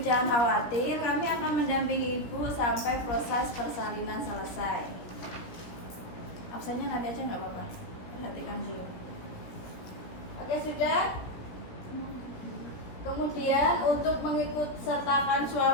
jangan khawatir, kami akan mendampingi ibu sampai proses persalinan selesai. Absennya nanti aja nggak apa-apa, perhatikan dulu. Oke, sudah. Kemudian untuk mengikut sertakan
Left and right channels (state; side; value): late; right; 17 ms